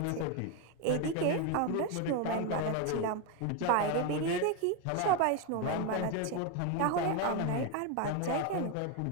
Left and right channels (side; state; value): both; different; correlation 0.02